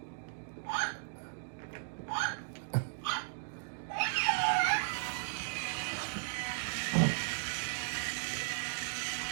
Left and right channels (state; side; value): silent; left; digital silence